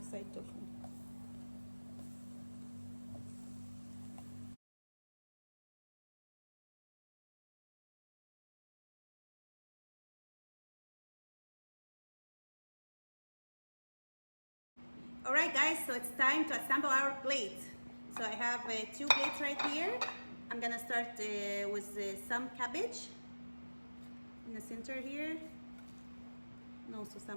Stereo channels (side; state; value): both; inverted; correlation -1.00